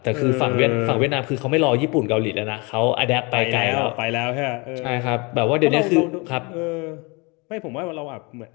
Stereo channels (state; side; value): quieter; right; 28.6 dB